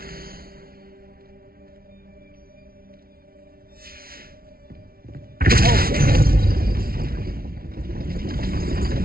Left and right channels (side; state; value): left; late; 0.44 ms